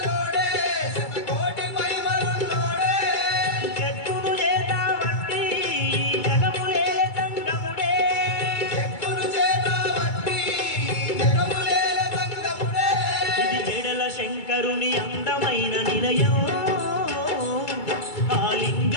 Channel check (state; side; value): late; right; 2.3 ms